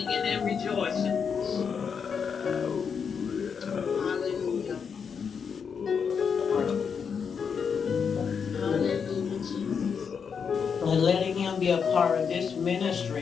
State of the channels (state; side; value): quieter; right; 6.5 dB